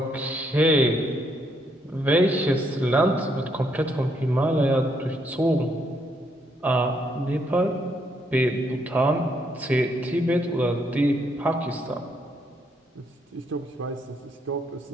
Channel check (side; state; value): both; normal; correlation 0.74